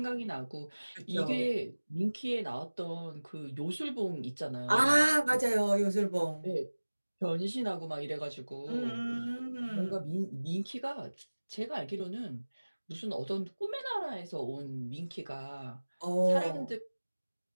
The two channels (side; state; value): both; inverted; correlation -1.00